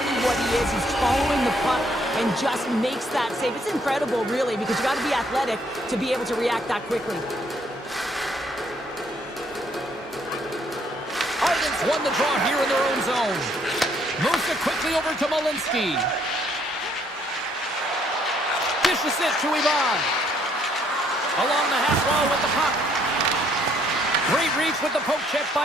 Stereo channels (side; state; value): both; normal; correlation 0.67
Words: what he is. He's following the puck and just makes that save. It's incredible, really, because you got to be athletic to be able to react that quickly. Ardents won the draw here in their own zone. Moves it quickly over to Malinsky. Dishes it to Ivan. Along the half wall with the puck. Great reach with the poke check